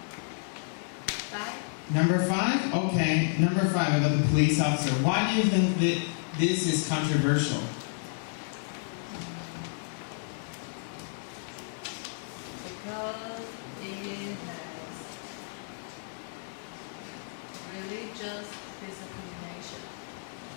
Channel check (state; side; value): silent; right; digital silence